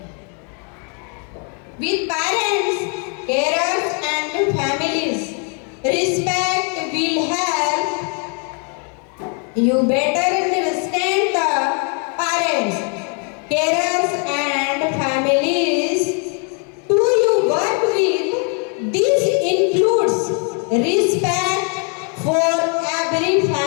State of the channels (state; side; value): quieter; right; 39.2 dB